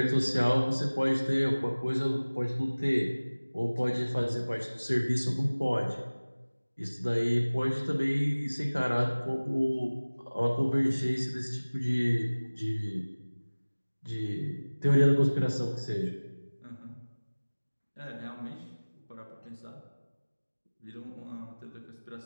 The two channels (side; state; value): both; inverted; correlation -1.00